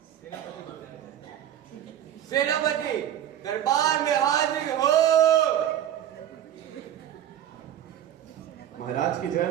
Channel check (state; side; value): quieter; left; 11.0 dB